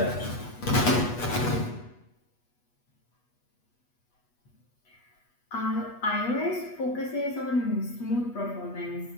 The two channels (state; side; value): late; right; 8.2 ms